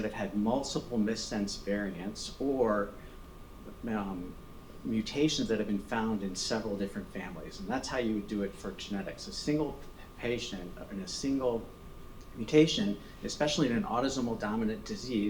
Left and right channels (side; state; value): both; identical; correlation 1.00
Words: have had multiple missense variants or mutations that have been found in several different families? And that's how you would do it for genetics. A single patient in a single mutation, especially in an autosomal dominant